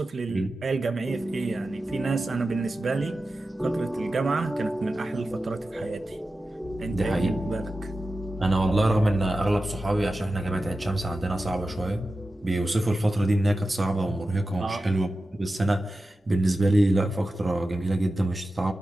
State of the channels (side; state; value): both; normal; correlation 0.93